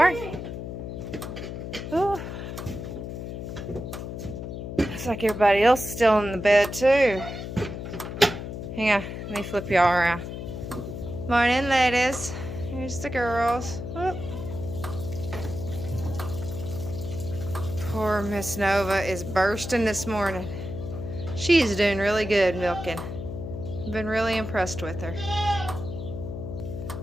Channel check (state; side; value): noise; left; hum, 7 dB below the sound